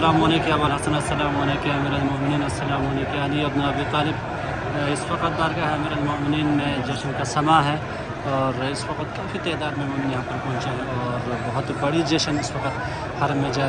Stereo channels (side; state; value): both; identical; correlation 1.00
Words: عليك يا ابا الحسن، السلام عليك يا امير المؤمنین، السلام عليك يا علي ابن ابی طالب. इस वक्त बारगाह अमीर المؤمنین में जश्न का समा है और इस वक्त काफ़ी तादाद में मोमिन यहाँ पर पहुँचे हैं और बहुत बड़ी जश्न इस वक्त हरम में